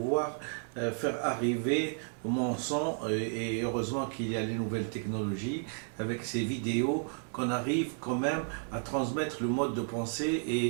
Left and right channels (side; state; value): left; silent; 55 dB below the other